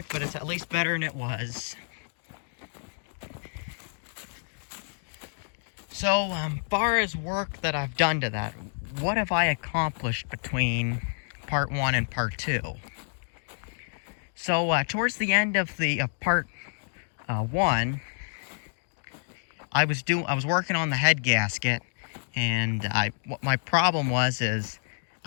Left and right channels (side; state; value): right; silent; digital silence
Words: but it's at least better than it was. So, far as work that I've done to that, what have I accomplished between part 1 and part 2? So, towards the end of the part 1, I was working on the head gasket, and what my problem is